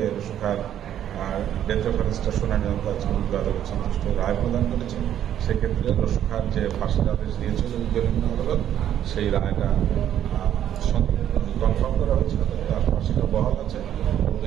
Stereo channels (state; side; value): quieter; left; 10.6 dB